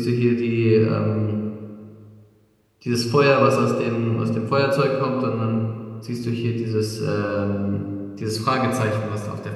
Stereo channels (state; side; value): identical; both; correlation 1.00